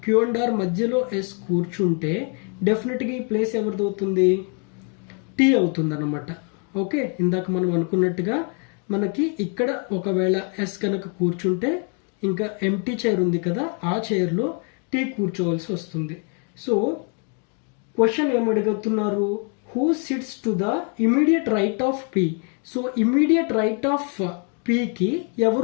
క్యూ అండ్ ఆర్ మధ్యలో ఎస్ కూర్చుంటే డెఫినెట్గా ఈ ప్లేస్ ఎవరిది అవుతుంది? టీ అవుతుంది అనమాట. ఓకే, ఇందాక మనం అనుకున్నట్టుగా మనకి ఇక్కడ ఒకవేళ ఎస్ కనుక కూర్చుంటే ఇంకా ఎంటీ చైర్ ఉంది కదా, ఆ చైర్లో టీ కూర్చోవలసి వస్తుంది. సో క్వశ్చన్ ఏమడుగుతున్నారు? Who sits to the immediate right of P. So immediate right of పీకి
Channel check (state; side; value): quieter; right; 38.6 dB